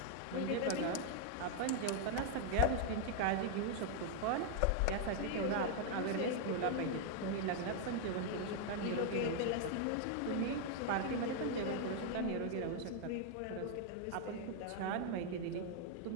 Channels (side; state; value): both; different; correlation 0.00